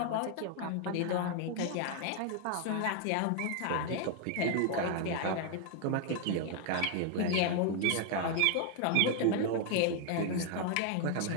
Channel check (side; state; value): both; different; correlation 0.00